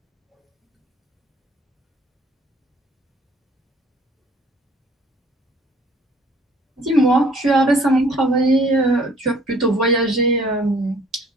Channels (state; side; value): normal; both; correlation 0.57